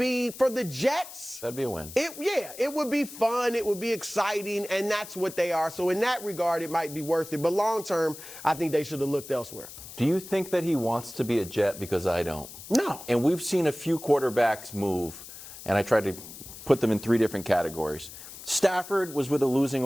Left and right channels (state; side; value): noise; left; hiss, 14 dB below the sound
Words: for the Jets. That'd be a win. It would be fun. It would be exciting, and that's what they are. So in that regard, it might be worth it. But long term, I think they should have looked elsewhere. Do you think that he wants to be a Jet? Because I don't. No. And we've seen a few quarterbacks move, and I tried to put them in three different categories. Stafford was with a losing